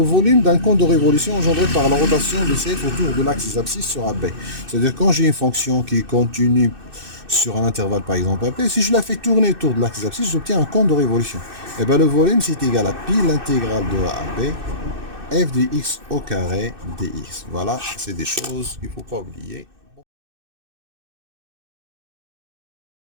volume d'un cône de révolution engendré par la rotation de CF autour de l'axe des abscisses sur AB. C'est-à-dire quand j'ai une fonction qui est continue sur un intervalle par exemple AB, si je la fais tourner autour de l'axe des abscisses, j'obtiens un cône de révolution. Et bien le volume c'est égal à pi l'intégrale de A à B, f de x au carré dx. Voilà, c'est des choses qu'il ne faut pas oublier.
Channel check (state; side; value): late; left; 2.6 ms